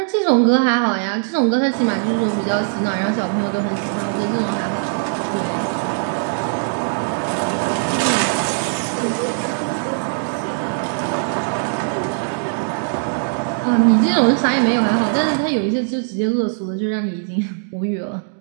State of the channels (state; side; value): silent; left; digital silence